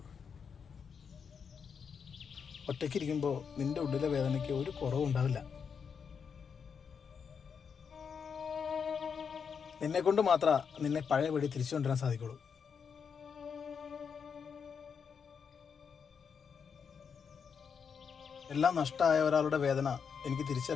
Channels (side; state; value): right; quieter; 6.5 dB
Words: ഒറ്റയ്ക്കിരിക്കുമ്പോൾ നിന്റെ ഉള്ളിലെ വേദനയ്ക്ക് ഒരു കുറവും ഉണ്ടാവില്ല. നിന്നെ കൊണ്ട് മാത്രമേ നിന്നെ പഴയപടി തിരിച്ചു കൊണ്ടുവരാൻ സാധിക്കുള്ളൂ. എല്ലാം നഷ്ടമായ ഒരാളുടെ വേദന എനിക്ക്